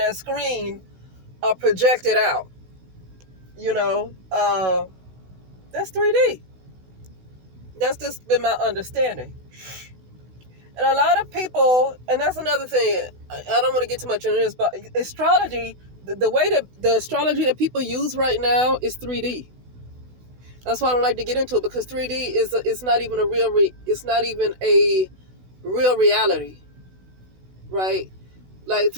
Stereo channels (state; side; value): late; left; 16 ms